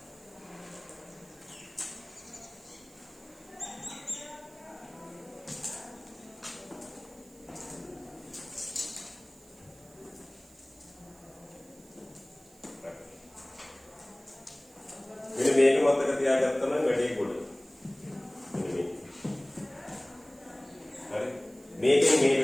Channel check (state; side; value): noise; right; hiss, 25 dB below the sound